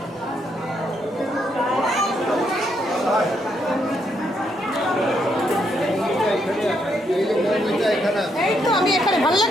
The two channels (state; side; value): normal; both; correlation 0.76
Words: এই তো আমি এখানে, ভালো